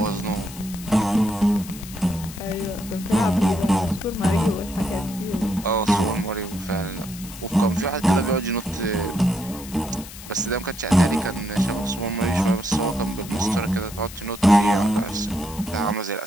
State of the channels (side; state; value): left; noise; hiss, 15 dB below the sound